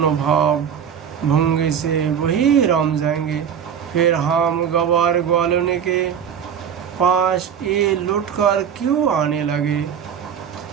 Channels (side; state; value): left; quieter; 8.1 dB